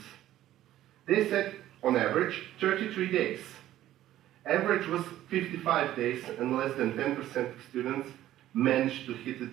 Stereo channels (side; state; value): left; quieter; 13.5 dB